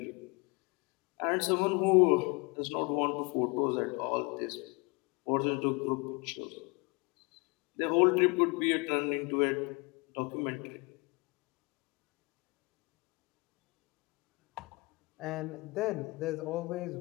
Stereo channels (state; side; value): quieter; right; 27.5 dB